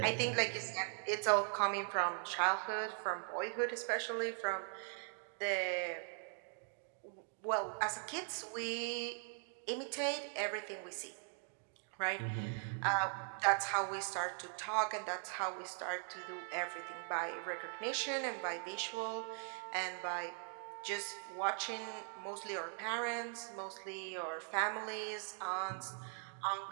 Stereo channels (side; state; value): left; silent; 51 dB below the other